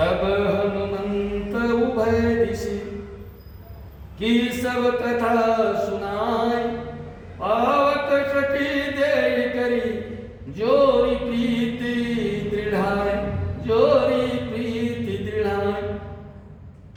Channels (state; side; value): identical; both; correlation 1.00